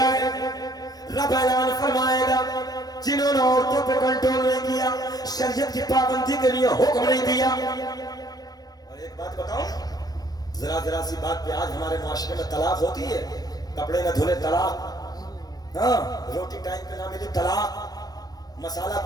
ہے. رب اعلان فرمائے گا جنہوں نے عورتوں پہ کنٹرول نہیں کیا, شریعت کی پابندی کے لیے حکم نہیں دیا. اور ایک بات بتاؤں, ذرا سی بات پہ آج ہمارے معاشرے میں طلاق ہوتی ہے. کپڑے نہ دھلے طلاق, ہاں روٹی ٹائم پہ نہ ملی طلاق, مسالہ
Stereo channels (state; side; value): late; right; 0.19 ms